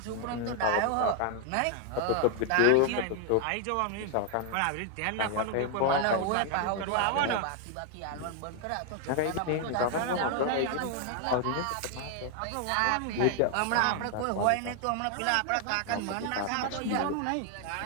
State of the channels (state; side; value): different; both; correlation 0.00